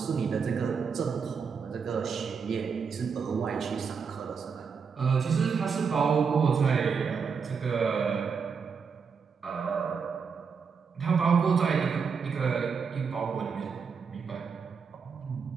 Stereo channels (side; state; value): left; quieter; 5.9 dB